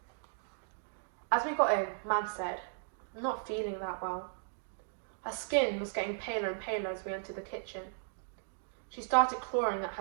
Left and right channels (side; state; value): left; silent; digital silence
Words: As we got in, Mum said, I'm not feeling that well. Her skin was getting paler and paler as we entered the kitchen. She started clawing at